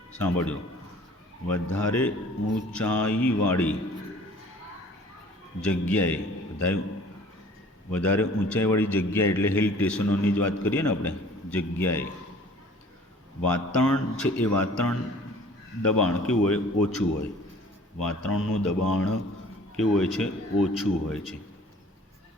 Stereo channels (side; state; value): both; normal; correlation 0.51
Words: સાંભળજો, વધારે ઊંચાઈવાળી જગ્યાએ, વધારે ઊંચાઈવાળી જગ્યાએ એટલે હિલ સ્ટેશનોની જ વાત કરીએ ને આપણે, જગ્યાએ વાતાવરણ છે એ વાતાવરણ દબાણ કેવું હોય? ઓછું હોય. વાતાવરણનું દબાણ કેવું હોય છે? ઓછું હોય છે.